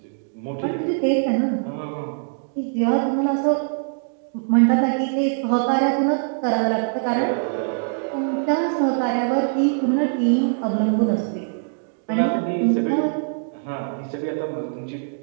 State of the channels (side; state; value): left; silent; digital silence